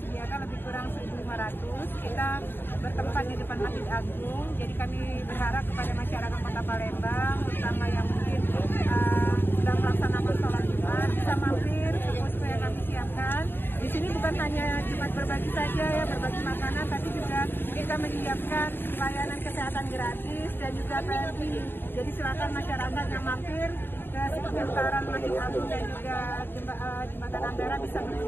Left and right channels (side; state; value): right; late; 0.10 ms